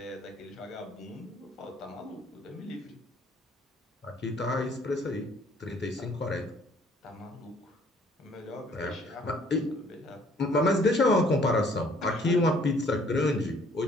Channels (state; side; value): normal; both; correlation 0.60